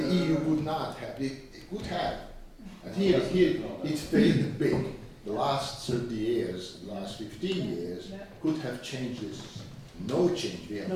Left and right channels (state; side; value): identical; both; correlation 1.00